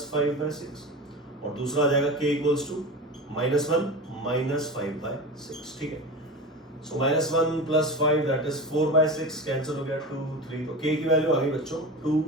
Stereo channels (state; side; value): normal; both; correlation 0.28